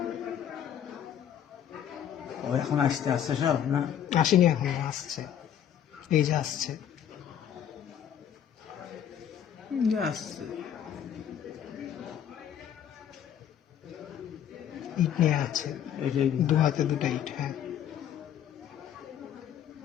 ও এখন আসতে আসছে সব না? আসেনি এখনো, আসছে। এই যে আসছে, আসছে। ইট নিয়ে আছে, এটাই দু হাতে দুটো ইট। হ্যাঁ,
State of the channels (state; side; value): quieter; right; 9.6 dB